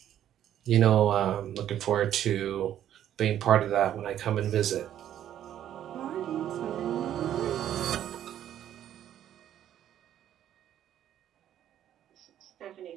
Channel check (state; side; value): quieter; left; 11.1 dB